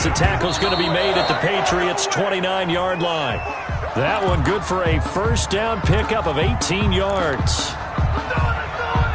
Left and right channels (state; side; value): identical; both; correlation 1.00